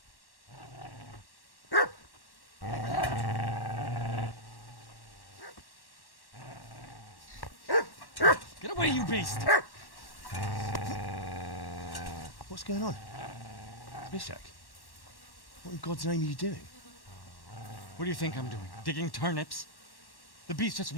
Get away, you beast! What's going on? Bishak? What in God's name are you doing? What do you think I'm doing? Digging turnips? The beast just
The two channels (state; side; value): late; right; 1.1 ms